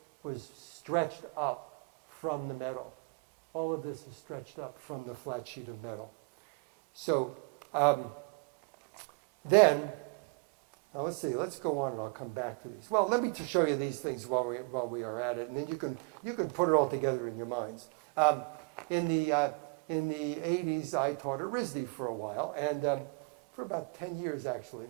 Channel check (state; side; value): quieter; left; 34.2 dB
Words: was stretched up from the metal. All of this is stretched up from the flat sheet of metal. So then, now let's see. Let's go on, and I'll come back to these. Well, let me just show you these things while we are at it, and then you can put it all together in your minds. In the 80s, I taught at RISD for a while, and for about 10 years actually.